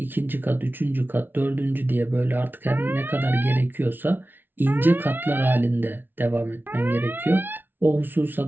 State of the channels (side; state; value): left; late; 0.096 ms